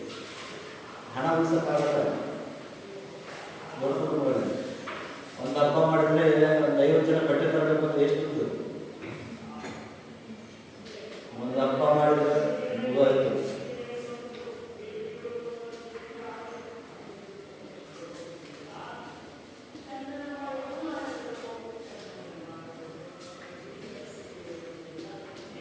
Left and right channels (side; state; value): both; identical; correlation 1.00